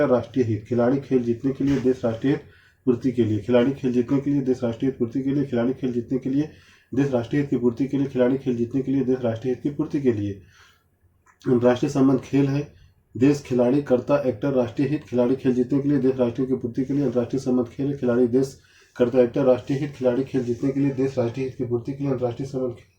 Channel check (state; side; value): identical; both; correlation 1.00